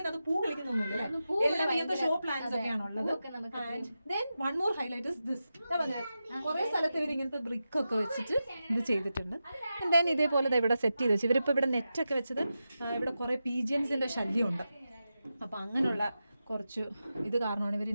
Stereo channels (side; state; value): both; inverted; correlation -0.91